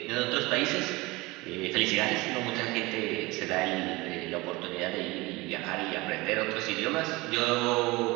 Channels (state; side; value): quieter; left; 22.0 dB